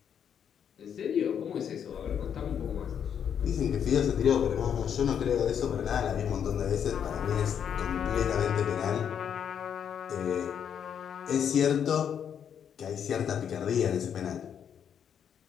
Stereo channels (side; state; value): right; quieter; 8.3 dB